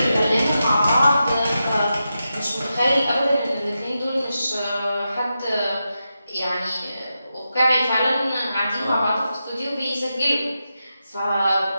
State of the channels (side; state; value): both; inverted; correlation -0.89